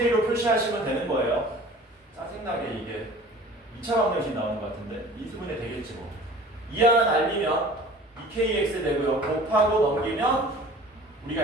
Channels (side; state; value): both; normal; correlation 0.45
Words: 표시하시면 되는 거예요. 짜증나게 이게 2차 방정식 나오는 것 같은데 미수분해 되겠지 뭐. 2 하나 날리면 2kx 되고요. 곱하고 넘기면 우리가